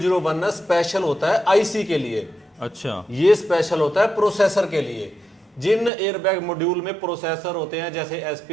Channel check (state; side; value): drops out; left; at 5.9 s